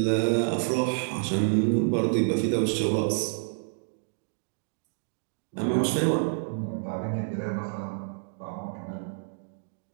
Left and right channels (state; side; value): silent; left; digital silence